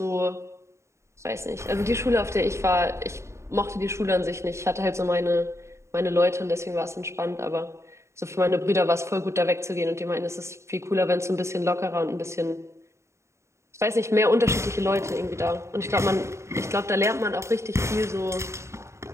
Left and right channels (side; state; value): left; late; 0.14 ms